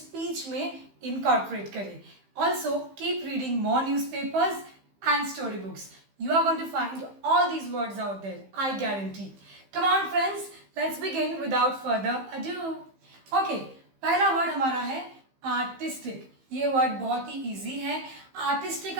में इनकॉर्पोरेट करें. Also keep reading more newspapers and story books. You are going to find all these words out there, I guarantee. Come on friends, let's begin without further ado. Okay, पहला वर्ड हमारा है आर्टिस्टिक. ये वर्ड बहुत ही इजी है. आर्टिस्टिक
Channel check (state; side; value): late; left; 15 ms